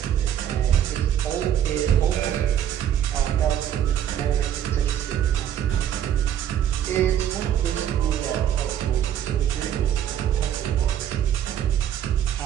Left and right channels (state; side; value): quieter; left; 10.2 dB